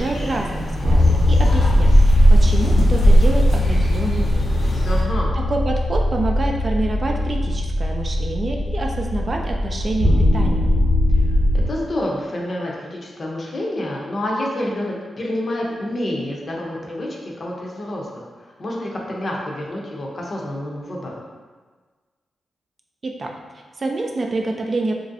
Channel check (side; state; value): both; normal; correlation 0.91